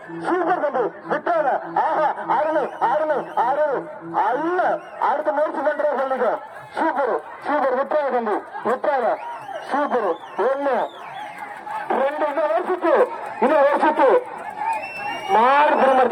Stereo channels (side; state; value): both; identical; correlation 1.00